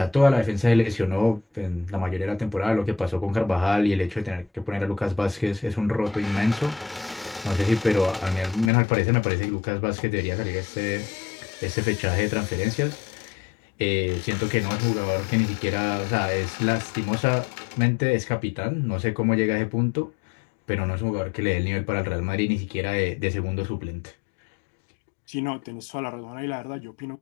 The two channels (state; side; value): drops out; right; at 8.7 s